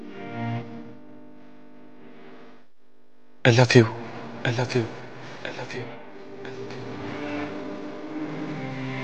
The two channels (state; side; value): identical; both; correlation 1.00